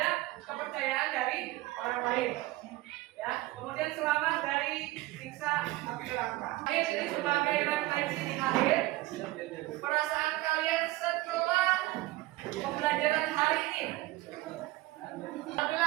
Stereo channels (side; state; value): left; quieter; 18.4 dB